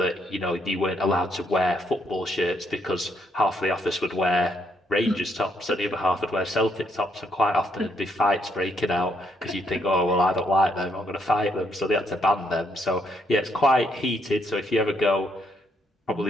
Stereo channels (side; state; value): both; normal; correlation 0.73